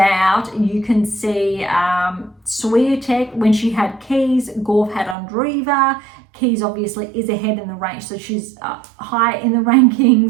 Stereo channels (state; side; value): drops out; left; at 5.2 s